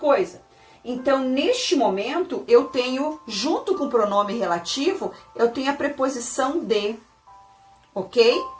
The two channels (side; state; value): both; identical; correlation 1.00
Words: Então, neste momento, eu tenho, junto com o pronome relativo, eu tenho a preposição de, ok?